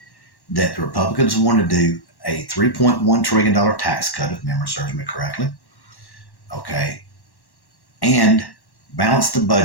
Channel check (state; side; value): late; right; 1.1 ms